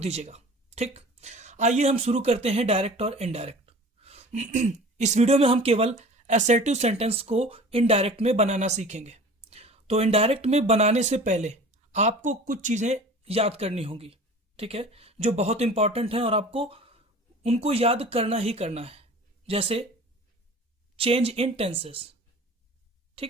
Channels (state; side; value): normal; both; correlation 0.42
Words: ठीक, आइए हम शुरू करते हैं डायरेक्ट और इनडायरेक्ट। इस वीडियो में हम केवल असर्टिव सेंटेंस को इनडायरेक्ट में बनाना सीखेंगे। तो इनडायरेक्ट में बनाने से पहले आपको कुछ चीजें याद करनी होंगी, ठीक है, जो बहुत इंपॉर्टेंट है और आपको उनको याद करना ही करना है। जैसे चेंज इन टेंसेस,